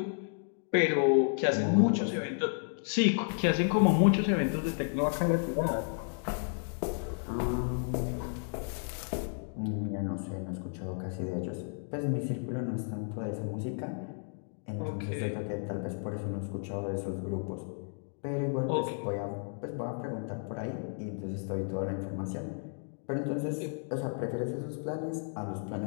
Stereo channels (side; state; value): right; silent; 56 dB below the other